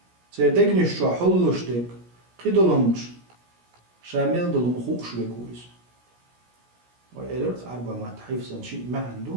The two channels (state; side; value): late; left; 17 ms